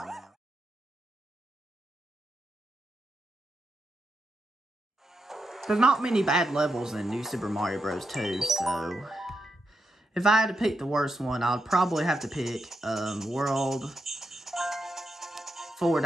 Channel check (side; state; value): both; normal; correlation 0.84